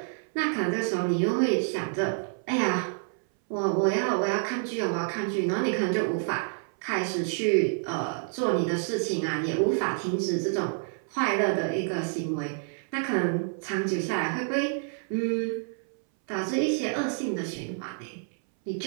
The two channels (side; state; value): left; silent; 59 dB below the other